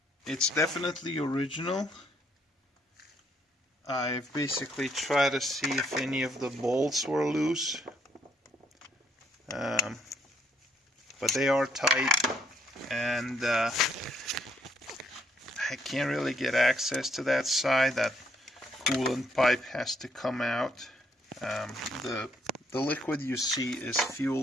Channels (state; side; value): normal; both; correlation 0.70